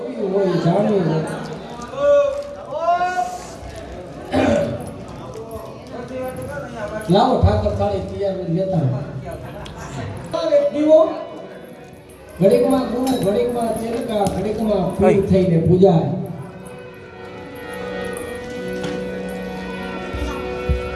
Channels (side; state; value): both; identical; correlation 1.00